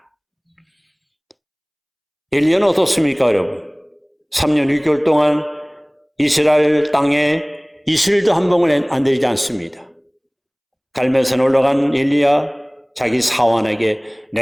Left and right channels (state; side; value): identical; both; correlation 1.00